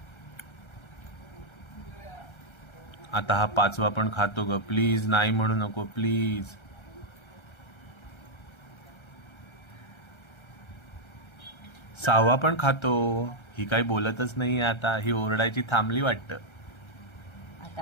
आता हा पाचवा पण खातो ग. प्लीज नाही म्हणू नको प्लीज. सहावा पण खातो. ही काही बोलतच नाहीये आता. ही ओरडायची थांबली वाटतं.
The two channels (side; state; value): right; late; 1.3 ms